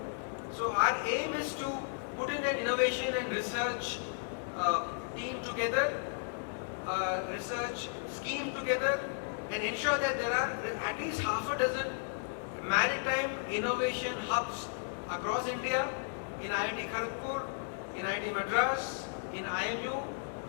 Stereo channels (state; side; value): silent; right; digital silence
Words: So our aim is to put in an innovation and research team together, research scheme together, and ensure that there are at least half a dozen maritime innovation hubs across India, in IIT Kharagpur, in IIT Madras, in IMU,